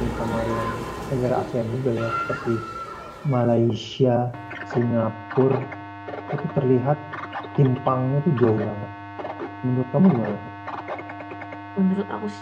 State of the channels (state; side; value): identical; both; correlation 1.00